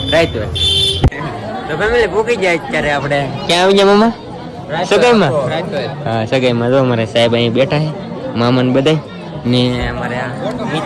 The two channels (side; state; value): both; identical; correlation 1.00